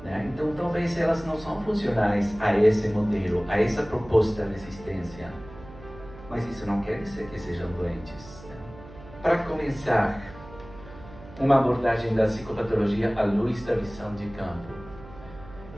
Né? Então, talvez elas não são funcionais a esse modelo, a essa proposta de existência. Mas isso não quer dizer que sejam doentes. Né? Para começar, uma abordagem da psicopatologia à luz da visão de campo.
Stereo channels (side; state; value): right; noise; hum, 18 dB below the sound